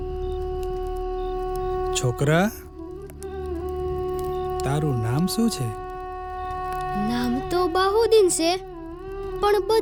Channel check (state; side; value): identical; both; correlation 1.00